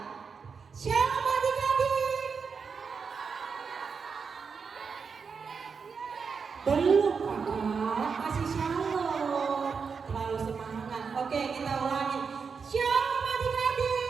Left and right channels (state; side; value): quieter; left; 5.6 dB